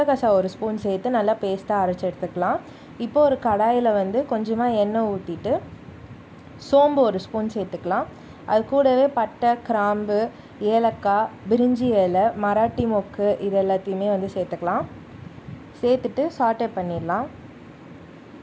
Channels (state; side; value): identical; both; correlation 1.00